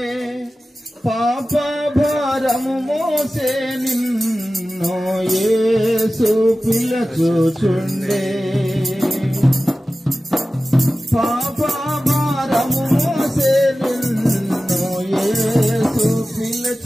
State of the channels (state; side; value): normal; both; correlation 0.95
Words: పాప భారము మోసే నిన్ను యేసు పిలచుచుండే, పాప భారము మోసే నిన్ను యేసు